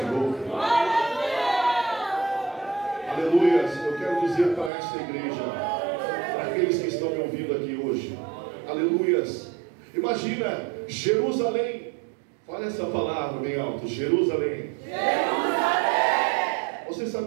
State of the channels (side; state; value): left; drops out; at 4.7 s